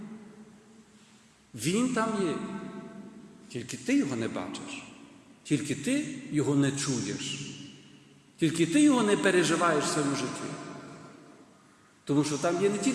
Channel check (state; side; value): identical; both; correlation 1.00